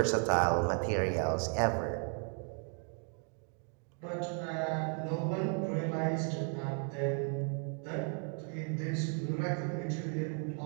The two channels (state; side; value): quieter; left; 38.4 dB